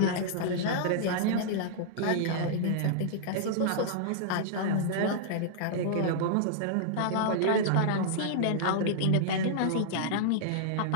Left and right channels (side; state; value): both; different; correlation -0.02